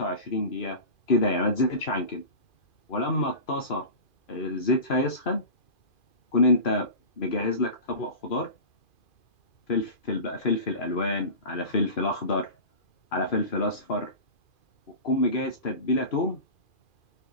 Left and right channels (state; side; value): late; right; 2.4 ms